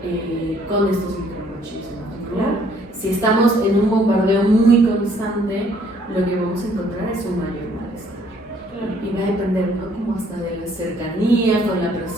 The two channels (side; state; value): both; normal; correlation 0.63